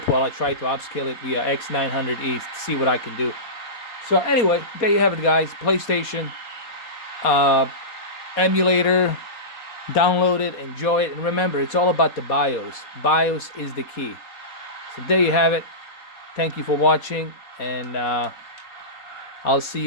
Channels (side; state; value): right; late; 4.1 ms